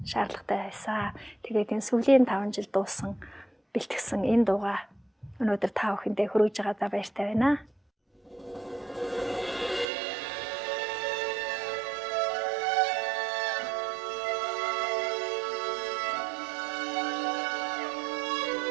шаардлагатай байсан. Тэгээд энэ сүүлийн 5 жил дуусан бэлтгэсэн энэ дууга өнөөдөр та бүхэндээ хүргэж байгаадаа баяртай байна.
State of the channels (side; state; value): left; drops out; at 9.9 s